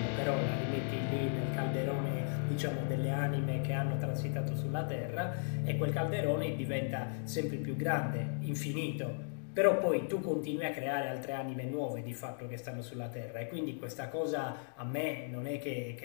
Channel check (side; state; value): right; silent; digital silence